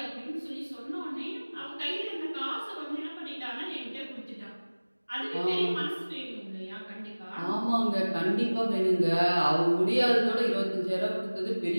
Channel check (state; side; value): inverted; both; correlation -1.00